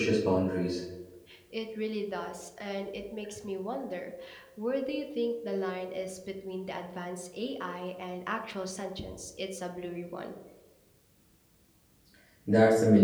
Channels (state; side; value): identical; both; correlation 1.00